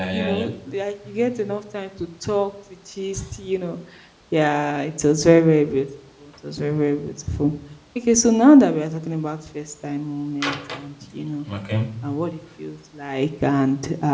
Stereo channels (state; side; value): identical; both; correlation 1.00